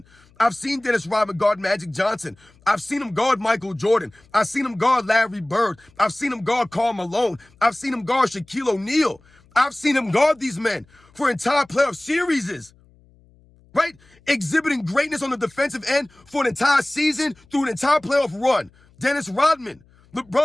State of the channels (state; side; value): noise; left; hum, 30 dB below the sound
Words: I've seen Dennis Rodman guard Magic Johnson. I've seen him guard Michael Jordan. I've seen him guard Larry Bird. I've seen him guard Karl Malone. I've seen him guard Shaquille O'Neal. I've seen him guard these men for entire playoff series, right? Exhibiting greatness on the defensive end for an entire season through an entire playoff run. Dennis Rodman.